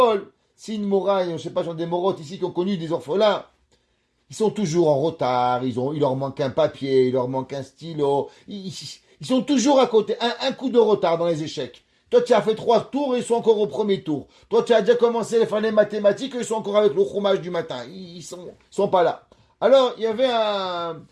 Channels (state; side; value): identical; both; correlation 1.00